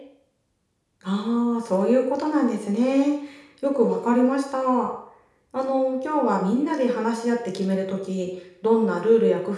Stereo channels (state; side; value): identical; both; correlation 1.00